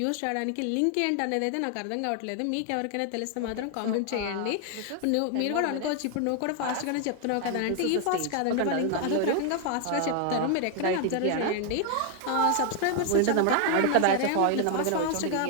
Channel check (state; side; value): different; both; correlation 0.00